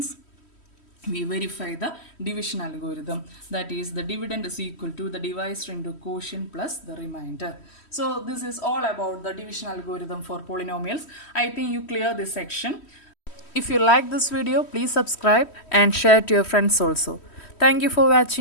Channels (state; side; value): late; right; 3.1 ms